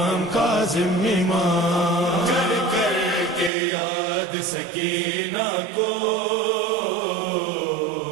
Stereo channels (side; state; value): left; drops out; at 3.5 s